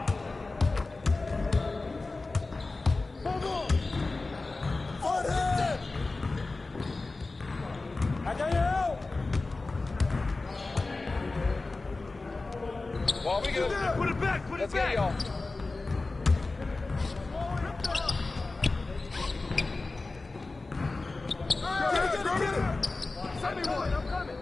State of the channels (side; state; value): right; quieter; 3.4 dB